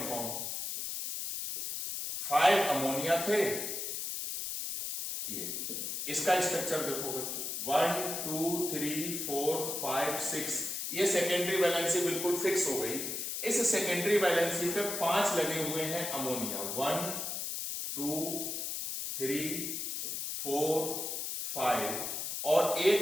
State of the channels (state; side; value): noise; left; hiss, 3 dB below the sound